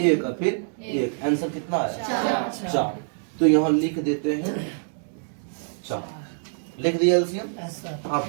और फिर 1, आंसर कितना आया? 4। तो यहाँ लिख देते हैं 4, लिख दिया एलसीएम। आप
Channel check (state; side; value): silent; left; digital silence